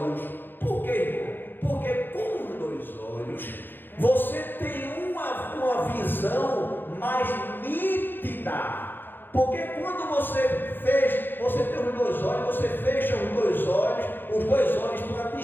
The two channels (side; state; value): right; late; 0.096 ms